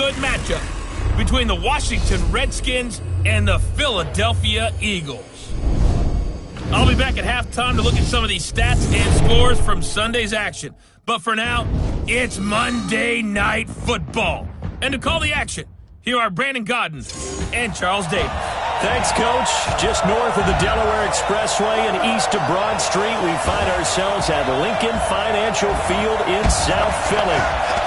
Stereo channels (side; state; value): both; identical; correlation 1.00